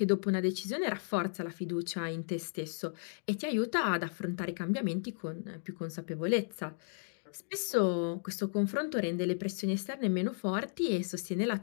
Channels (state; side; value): silent; right; digital silence